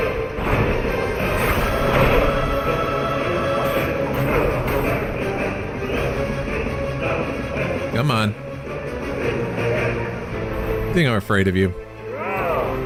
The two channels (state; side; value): identical; both; correlation 1.00